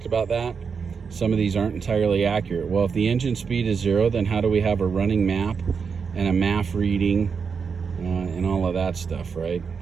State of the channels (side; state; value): left; quieter; 5.8 dB